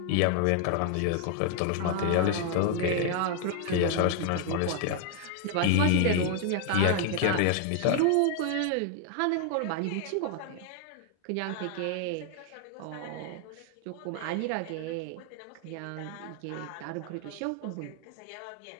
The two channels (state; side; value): different; both; correlation 0.00